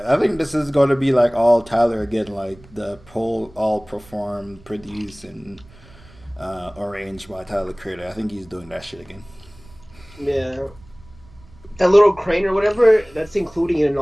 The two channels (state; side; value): noise; right; rumble, 24 dB below the sound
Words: think this is going to be like all Tyler again, like the all performed, produced, and arranged by Tyler Creator. I think he's doing that shit again. Yeah. That little crane or whatever, that's including in